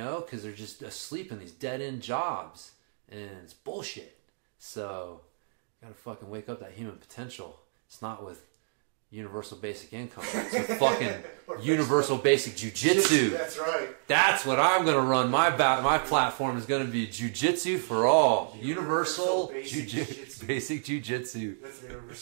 they're just asleep in these dead-end jobs, and it's bullshit. So, gotta fucking wake up that human potential. It's not with universal basic income. It's with fucking universal basic jiu-jitsu. That's right. That's what I'm gonna run. My platform is gonna be jiu-jitsu for all. Universal basic jiu-jitsu. Basic jiu-jitsu. That's the name of our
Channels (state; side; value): silent; left; digital silence